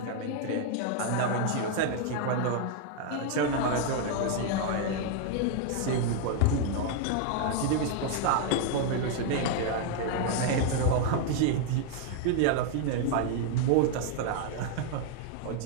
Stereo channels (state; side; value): different; both; correlation 0.00